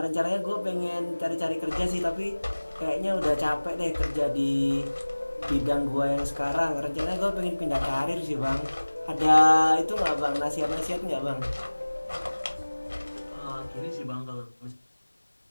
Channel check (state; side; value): inverted; both; correlation -1.00